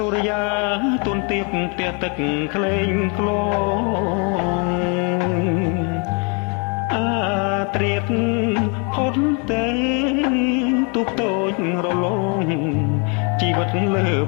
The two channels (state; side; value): quieter; right; 35.6 dB